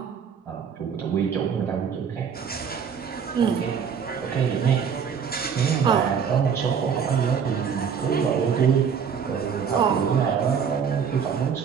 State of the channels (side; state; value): left; quieter; 7.0 dB